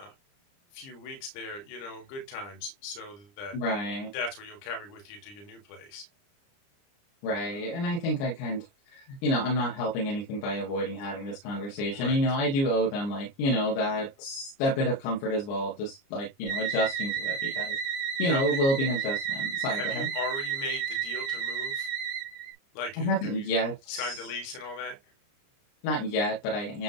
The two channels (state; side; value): late; right; 29 ms